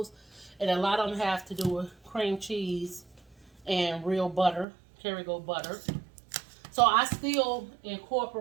and a lot of them have to do with cream cheese and real butter, Kerrygold butter. So I still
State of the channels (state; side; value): drops out; left; at 4.7 s